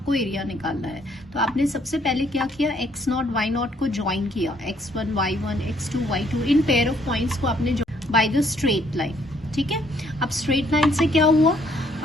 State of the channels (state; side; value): normal; both; correlation 0.66